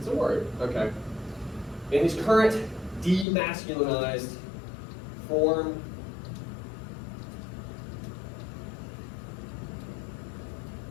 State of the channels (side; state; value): right; drops out; at 3.2 s